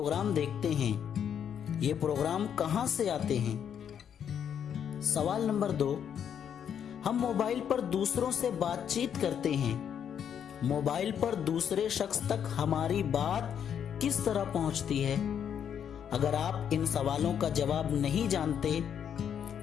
देखते हैं, ये प्रोग्राम कहां से आते हैं? सवाल नंबर 2, हम मोबाइल पर दूसरों से बातचीत करते हैं, मोबाइल पर दूसरे शख्स तक हमारी बात किस तरह पहुंचती है? अगर आप इन सवालों का जवाब नहीं जानते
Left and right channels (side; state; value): right; quieter; 8.5 dB